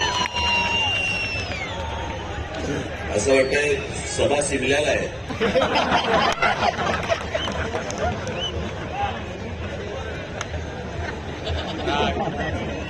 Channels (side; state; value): both; identical; correlation 1.00